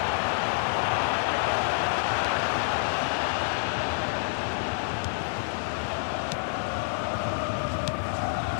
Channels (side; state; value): right; silent; digital silence